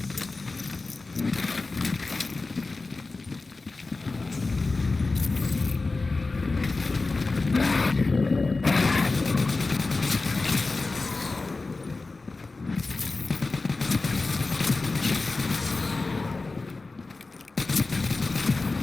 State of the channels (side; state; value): right; quieter; 3.6 dB